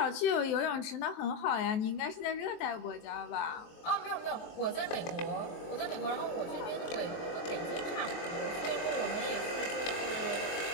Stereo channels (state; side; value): late; right; 23 ms